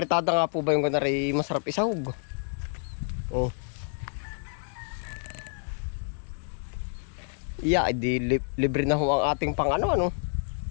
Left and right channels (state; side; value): silent; right; 58 dB below the other